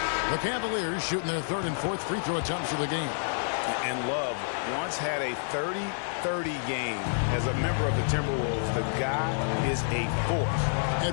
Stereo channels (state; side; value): silent; right; digital silence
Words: The Cavaliers shooting their third and fourth free throw attempts of the game. And Love once had a 30-30 game as a member of the Timberwolves. The guy is a force.